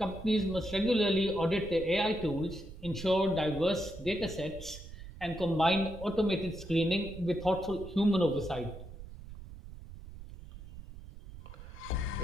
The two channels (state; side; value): noise; right; rumble, 14 dB below the sound